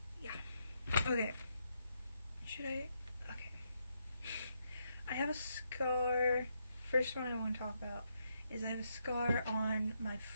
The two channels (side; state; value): both; inverted; correlation -0.80